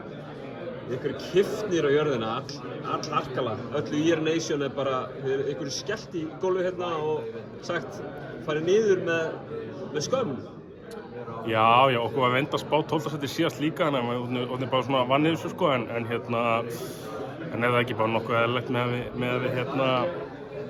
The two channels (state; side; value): identical; both; correlation 1.00